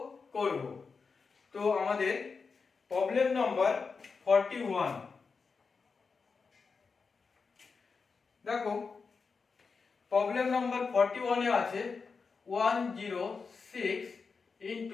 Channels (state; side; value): quieter; right; 5.0 dB